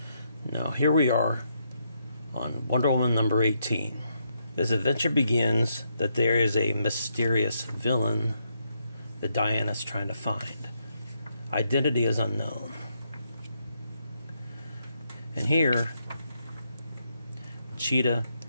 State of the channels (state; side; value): inverted; both; correlation -0.78